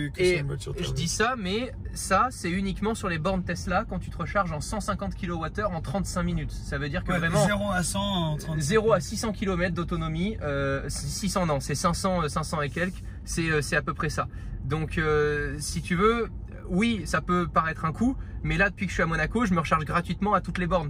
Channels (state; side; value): identical; both; correlation 1.00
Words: Et une voiture je thermique. dis ça, mais ça, c'est uniquement sur les bornes Tesla quand tu te recharges en 150 kWh en 35 minutes. Ça veut dire que vraiment 0 à 100 en 30 0 à 600 km d'autonomie, 600 non, c'est 500 et quelques, c'est à peu près ça. Donc si tu veux, oui, ça peut paraître un coût, mais là depuis que je suis à Monaco, je me recharge gratuitement à toutes les bornes